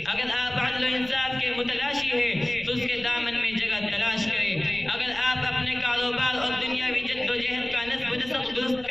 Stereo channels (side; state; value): left; noise; rumble, 19 dB below the sound